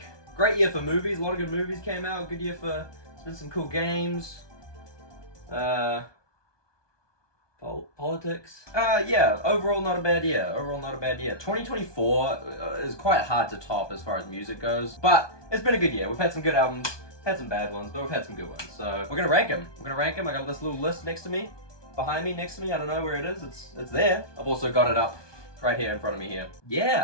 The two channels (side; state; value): right; late; 1.2 ms